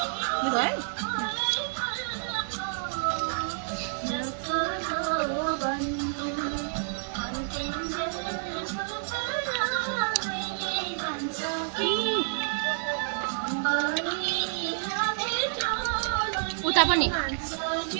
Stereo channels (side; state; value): left; silent; 59 dB below the other